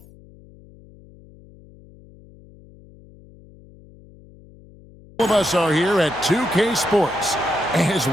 of us are here at 2K Sports as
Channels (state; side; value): noise; left; hum, 24 dB below the sound